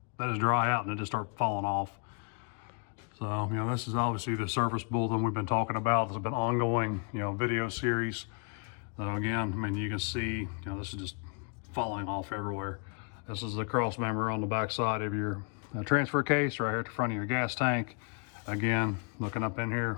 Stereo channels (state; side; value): quieter; right; 37.4 dB